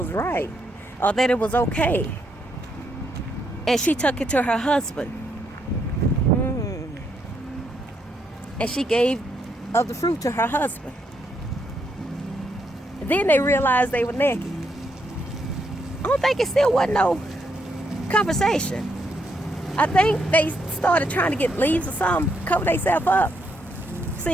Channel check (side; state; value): both; normal; correlation 0.77